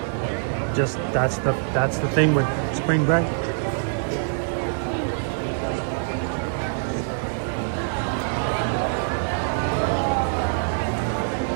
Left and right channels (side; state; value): left; silent; 62 dB below the other